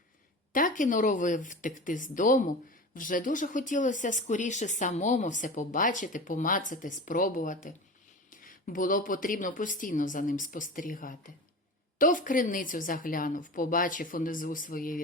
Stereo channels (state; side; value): normal; both; correlation 0.32